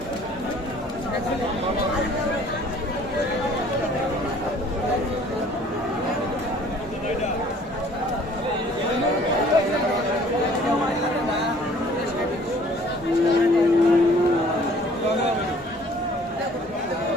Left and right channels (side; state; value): both; normal; correlation 0.54